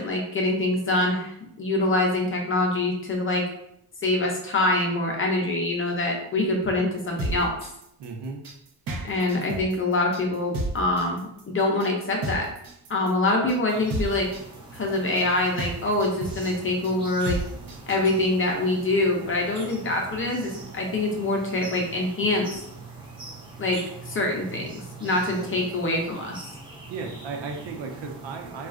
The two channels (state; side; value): normal; both; correlation 0.12